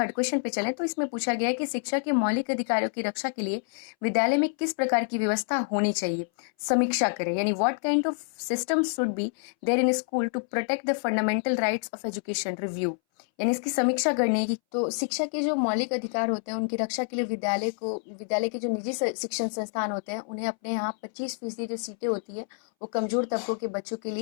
क्वेश्चन पे चलें, तो इसमें पूछा गया है कि शिक्षा के मौलिक अधिकारों की रक्षा के लिए विद्यालय में किस प्रकार की व्यवस्था होनी चाहिए, समीक्षा करें। यानी what kind of system should be there in school to protect the fundamental rights of education, review. यानी इसकी समीक्षा करने की। तो शिक्षा के जो मौलिक अधिकार होते हैं उनकी रक्षा के लिए विद्यालय के जो निजी शिक्षण संस्थान होते हैं उन्हें अपने यहाँ 25% जो सीटें होती है वो कमजोर तबकों के बच्चों के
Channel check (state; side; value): silent; right; 60 dB below the other